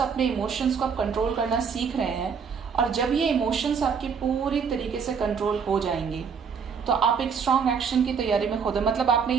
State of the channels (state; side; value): quieter; left; 6.3 dB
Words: अपने इमोशंस को आप कंट्रोल करना सीख रहे हैं, और जब ये इमोशंस आपके पूरी तरीके से कंट्रोल हो जाएंगे तो आप एक स्ट्रॉन्ग एक्शन की तैयारी में खुद, मतलब आपने